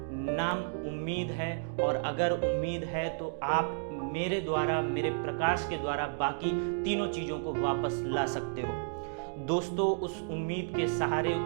नाम उम्मीद है और अगर उम्मीद है तो आप मेरे द्वारा, मेरे प्रकाश के द्वारा बाकी तीनों चीज़ों को वापस ला सकते हो। दोस्तों, उस उम्मीद के सहारे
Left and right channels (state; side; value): silent; left; digital silence